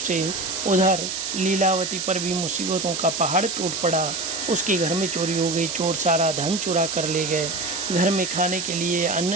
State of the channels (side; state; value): right; noise; hiss, 4 dB below the sound